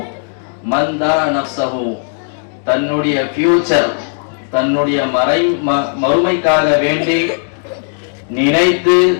மந்தா நஃப்ஸஹு, தன்னுடைய ஃபியூச்சர், தன்னுடைய மறுமைக்காக வேண்டி நினைத்து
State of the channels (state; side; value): silent; right; digital silence